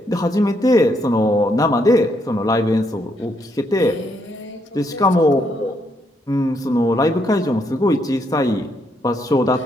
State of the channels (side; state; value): both; normal; correlation 0.75